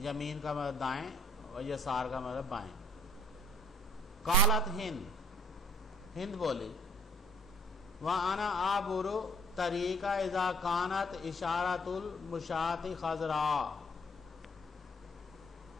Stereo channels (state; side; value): normal; both; correlation 0.62